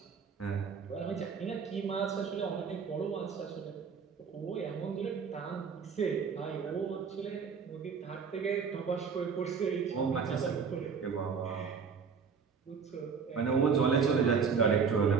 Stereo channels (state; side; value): quieter; left; 6.0 dB